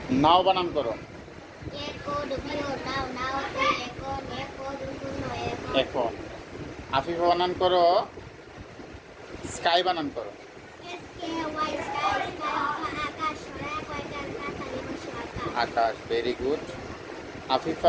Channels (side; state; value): both; identical; correlation 1.00